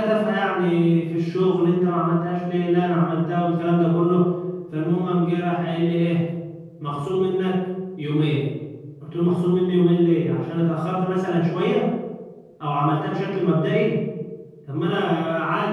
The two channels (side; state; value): both; identical; correlation 1.00